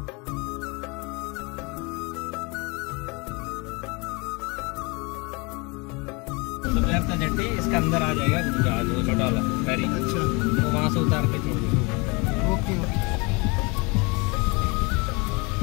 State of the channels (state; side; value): quieter; right; 28.5 dB